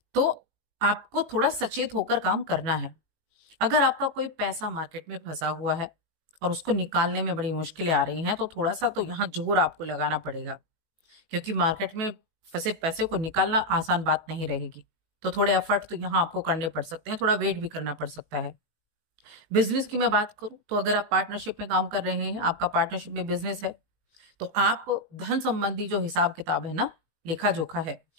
तो आपको थोड़ा सचेत होकर काम करना है। अगर आपका कोई पैसा मार्केट में फंसा हुआ है और उसको निकालने में बड़ी मुश्किलें आ रही हैं, तो थोड़ा सा तो यहाँ जोर आपको लगाना पड़ेगा, क्योंकि मार्केट में फंसे पैसे को निकालना आसान बात नहीं रहेगी। तो थोड़े एफर्ट तो यहाँ आपको करने पड़ सकते हैं, थोड़ा वेट भी करना पड़ सकता है। बिजनेस की मैं बात करूं तो अगर आप पार्टनरशिप में काम कर रहे हैं, आपका पार्टनरशिप में बिजनेस है, तो आप धन संबंधी जो हिसाब किताब है ना, लेखा जोखा है,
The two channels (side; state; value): left; late; 18 ms